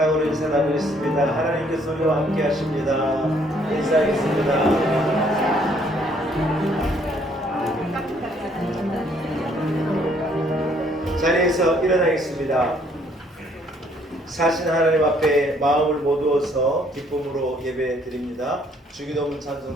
인사하고 있습니다. 하나님께서 우리와 함께 하십니다. 인사하겠습니다. 자리에서 일어나겠습니다. 사신 하나님 앞에 마음을 모두어서 기쁨으로 예배 드립니다. 주기도문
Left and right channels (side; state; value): both; normal; correlation 0.65